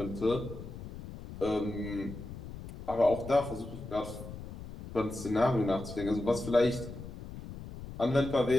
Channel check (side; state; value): left; noise; rumble, 12 dB below the sound